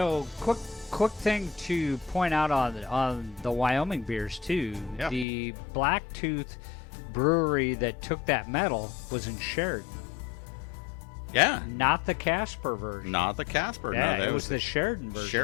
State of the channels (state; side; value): drops out; right; at 5.2 s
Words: quick thing to point out on the Wyoming beers too. Yeah. The Blacktooth brewery that took that medal was in Sheridan. Yeah. Not the Casper version. Not the Casper. Yeah, no, it was the Sheridan version.